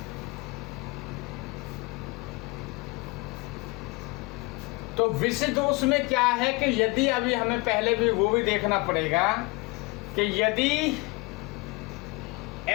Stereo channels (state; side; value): quieter; right; 25.0 dB